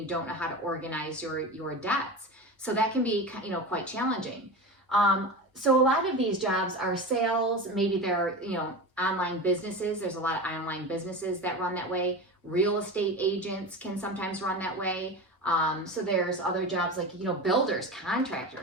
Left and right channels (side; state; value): both; normal; correlation 0.27